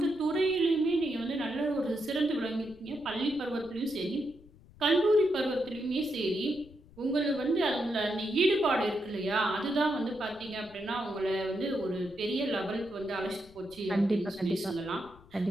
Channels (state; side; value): noise; left; rumble, 24 dB below the sound